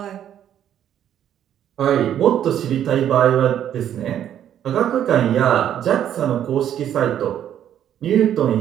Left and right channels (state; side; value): quieter; left; 10.3 dB